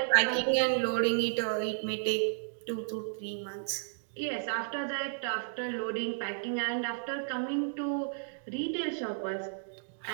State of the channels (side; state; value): left; silent; digital silence